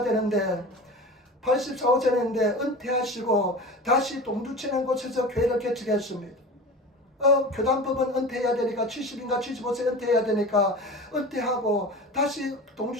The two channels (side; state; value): both; normal; correlation 0.33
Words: 되는데, 84~85세인데 은퇴하시고 다시 동두천이라는 곳에서 교회를 개척했습니다. 교단법은 은퇴해야 되니까, 70인가 75세 은퇴해야 되니까 은퇴하고 다시